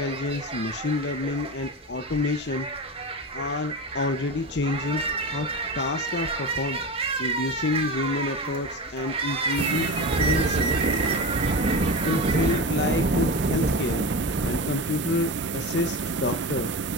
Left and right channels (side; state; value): both; normal; correlation 0.25